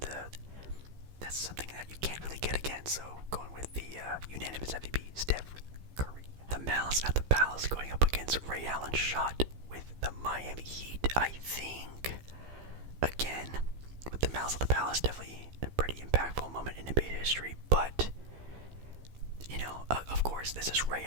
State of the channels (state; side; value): late; left; 15 ms